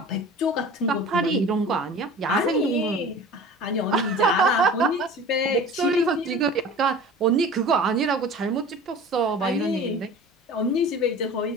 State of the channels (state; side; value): normal; both; correlation 0.40